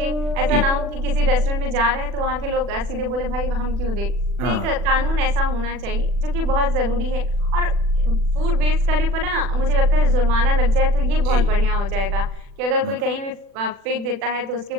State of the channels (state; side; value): late; left; 40 ms